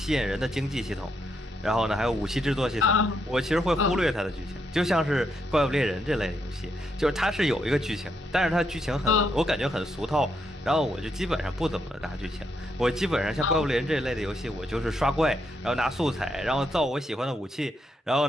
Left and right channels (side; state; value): both; normal; correlation 0.79